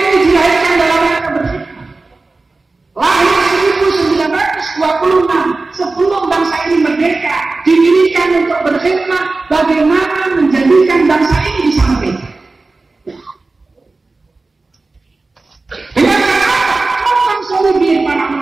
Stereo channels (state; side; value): quieter; left; 3.5 dB